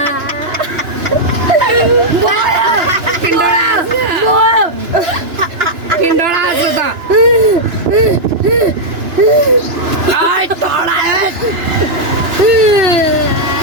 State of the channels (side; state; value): left; late; 2.9 ms